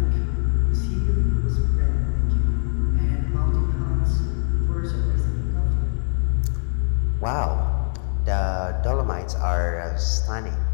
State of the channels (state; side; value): silent; right; 60 dB below the other